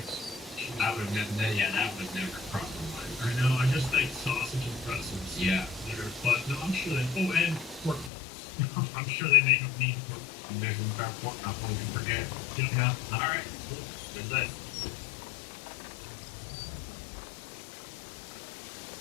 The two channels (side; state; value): right; drops out; at 8.1 s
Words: That would never cross my mind. I know, I just think sausage and pretzels. Yeah. There, but no, I'm sure they. Oh, and pork roast. I'm sure they make mean pork. There's one about pork, not one you forget. Yeah. All right. Cool. Good list.